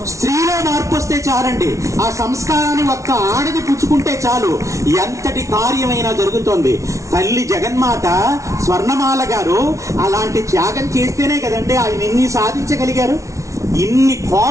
స్త్రీలో మార్పు వస్తే చాలండి. ఆ సంస్కారాన్ని ఒక్క ఆడది పుచ్చుకుంటే చాలు, ఎంతటి కార్యమైనా జరుగుతోంది. తల్లి జగన్మాత స్వర్ణమాల గారు అలాంటి త్యాగం చేస్తేనే కదండి ఆయన ఇన్ని సాధించగలిగారు. ఇన్ని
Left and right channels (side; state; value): left; late; 0.15 ms